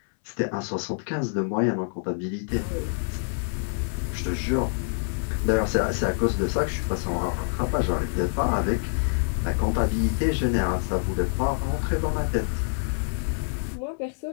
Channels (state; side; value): silent; right; 61 dB below the other